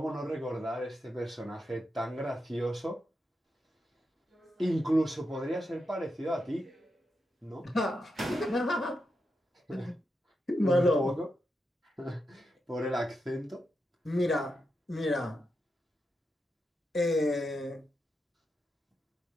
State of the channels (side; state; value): both; normal; correlation 0.86